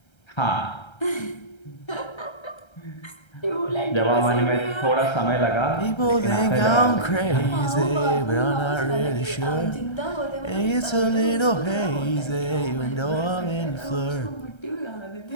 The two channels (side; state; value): right; late; 1.3 ms